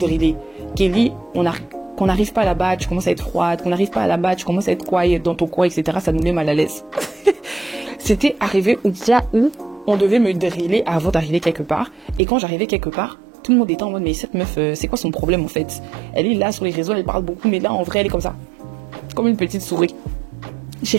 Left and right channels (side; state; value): left; drops out; at 12.2 s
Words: Kelly, qu'on n'arrive pas là-bas, tu commences à être froide, qu'on n'arrive pas là-bas, tu commences à être quiet dans ton coin, etc. Ça nous met mal à l'aise. C'était arrivé au point où on devait me driller avant d'arriver quelque part. Et quand j'arrivais quelque part, tout le monde était en mode, mais cette meuf, c'est quoi son problème en fait? Elle est là sur les réseaux, elle parle beaucoup, mais là en vrai, elle est comme ça. Comme une petite souris.